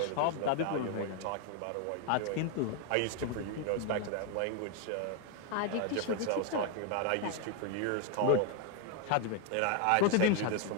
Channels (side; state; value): both; different; correlation 0.01